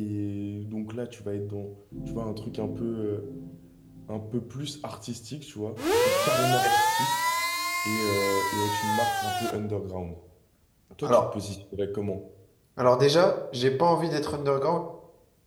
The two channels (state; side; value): identical; both; correlation 1.00